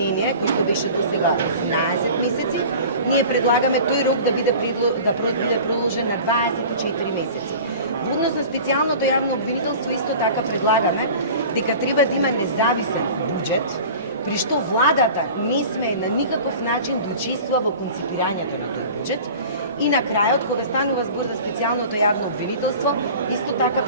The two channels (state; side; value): inverted; both; correlation -0.40